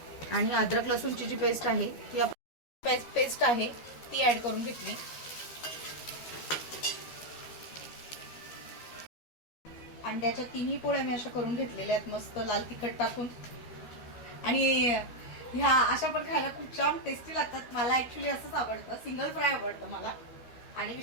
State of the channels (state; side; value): late; right; 12 ms